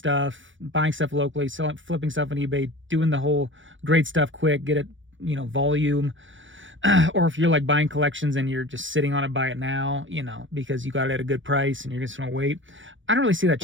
buying stuff locally, flipping stuff on eBay, doing the whole great stuff quick, get it, volume. Or if you're like buying collections and you're just sitting on it, buy it now, because you got it at a good price and you're just going to wait. I don't really see that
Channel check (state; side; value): late; left; 0.56 ms